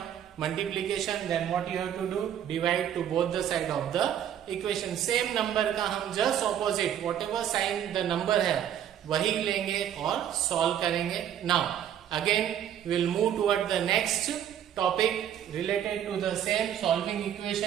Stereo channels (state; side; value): quieter; left; 10.1 dB